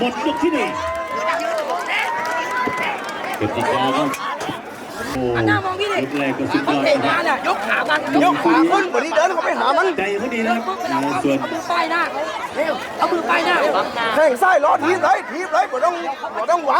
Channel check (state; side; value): identical; both; correlation 1.00